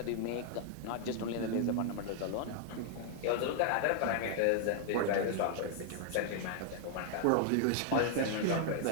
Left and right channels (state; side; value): different; both; correlation 0.00